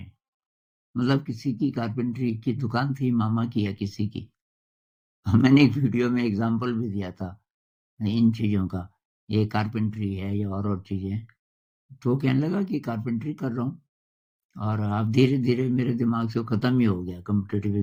हैं। मतलब किसी की कारपेंटरी की दुकान थी, मामा की या किसी की। मैंने एक वीडियो में एग्ज़ाम्पल भी दिया था इन चीज़ों का, ये कारपेंटरी है या और चीज़ें। तो वो कहने लगा कि कारपेंटरी कर रहा हूँ और अब धीरे-धीरे मेरे दिमाग से वो खत्म ही हो गया कॉम्पिटिटिव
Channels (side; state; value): both; identical; correlation 1.00